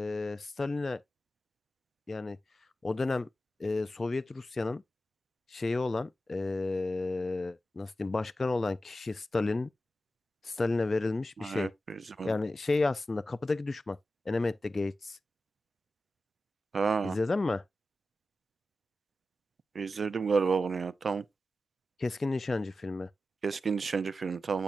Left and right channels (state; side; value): normal; both; correlation 0.92